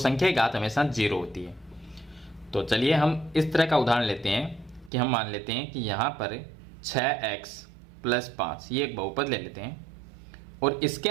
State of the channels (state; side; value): drops out; left; at 4.9 s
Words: की घात हमेशा 0 होती है। तो चलिए हम इस तरह का उदाहरण लेते हैं कि हम मान लेते हैं कि यहाँ पर 6x + 5 ये एक बहुपद ले लेते हैं, और इसके